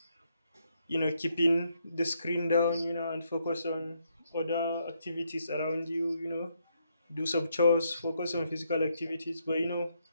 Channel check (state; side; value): inverted; both; correlation -0.76